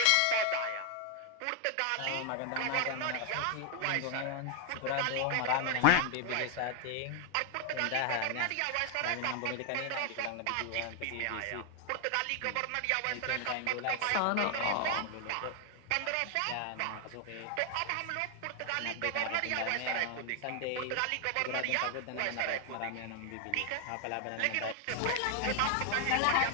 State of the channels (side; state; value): both; different; correlation 0.00